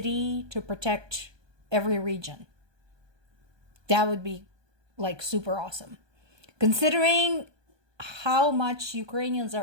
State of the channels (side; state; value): left; late; 1.2 ms